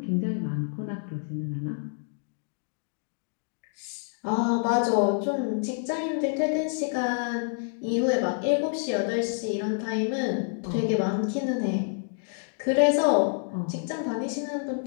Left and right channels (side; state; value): right; silent; 59 dB below the other